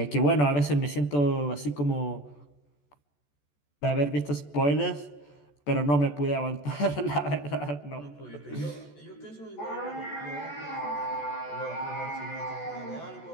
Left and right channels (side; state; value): right; late; 14 ms